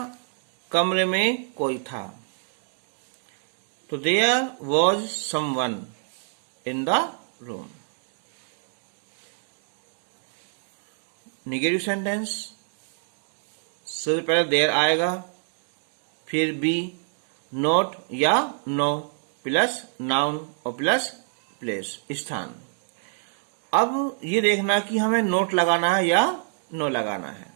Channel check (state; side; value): silent; left; digital silence